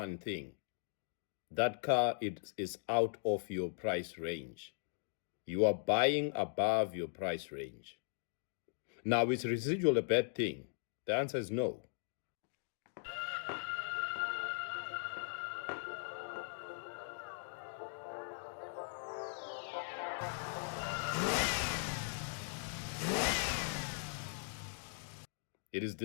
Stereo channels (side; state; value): right; silent; digital silence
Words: thing. That car is out of your price range. You are buying above your price range. Now, is residual a bad thing? The answer is no. It is